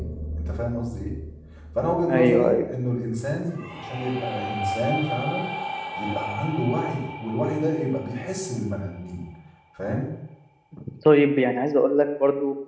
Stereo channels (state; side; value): identical; both; correlation 1.00